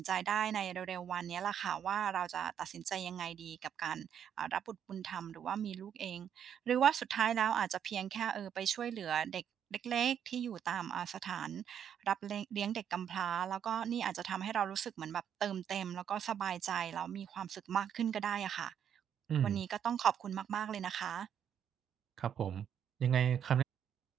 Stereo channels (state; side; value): quieter; left; 8.8 dB